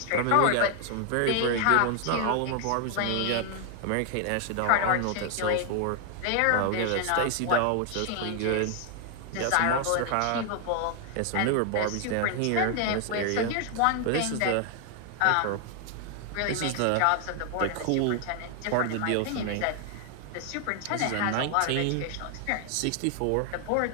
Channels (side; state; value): both; different; correlation 0.00